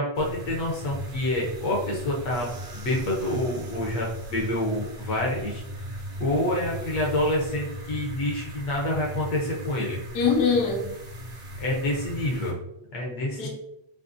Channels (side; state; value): right; late; 8.3 ms